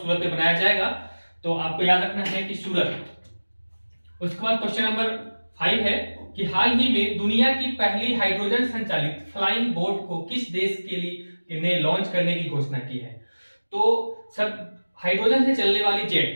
में बनाया जाएगा। तो आपको याद रखना है कि सूरत। उसके बाद क्वेश्चन नंबर 5 है कि हाल ही में दुनिया की पहली हाइड्रोजन संचालित फ्लाइंग बोट को किस देश के लिए ने लॉन्च करने की घोषणा की है। तो सब हाइड्रोजन से चलने वाली जेट,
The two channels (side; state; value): both; inverted; correlation -1.00